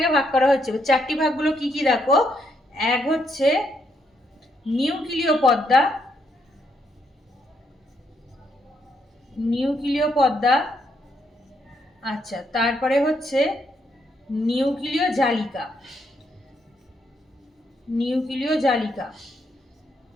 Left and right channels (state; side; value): normal; both; correlation 0.76